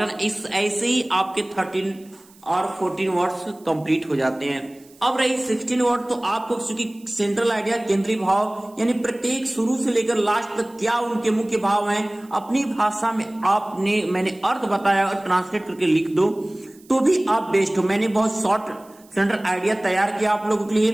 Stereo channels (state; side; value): noise; right; hiss, 27 dB below the sound